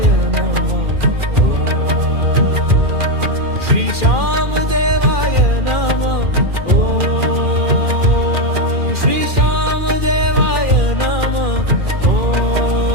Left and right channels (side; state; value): left; late; 2.4 ms